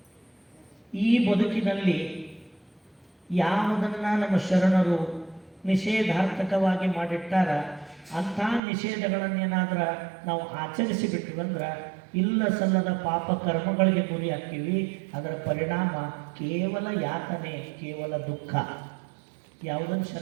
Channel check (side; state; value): left; drops out; at 8.6 s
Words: ಈ ಬದುಕಿನಲ್ಲಿ ಯಾವುದನ್ನ ನಮ್ಮ ಶರಣರು ನಿಷೇಧಾರ್ಥಕವಾಗಿ ಮಾಡಿಟ್ಟಾರ ಅಂಥ ನಿಷೇಧಗಳನ್ನೇನಾದ್ರ ನಾವು ಆಚರಿಸಿ ಬಿಟ್ಟಿವಂದ್ರೆ ಇಲ್ಲ ಸಲ್ಲದ ಪಾಪ ಕರ್ಮಗಳಿಗೆ ಗುರಿ ಹಾಕ್ತೀವಿ. ಅದರ ಪರಿಣಾಮ ಕೇವಲ ಯಾತನೆ, ಕೇವಲ ದುಃಖ. ಯಾವುದನ್ನು